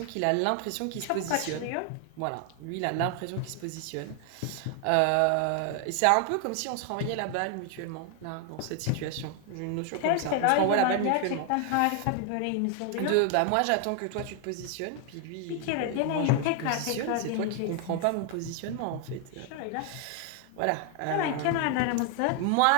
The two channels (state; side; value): different; both; correlation 0.00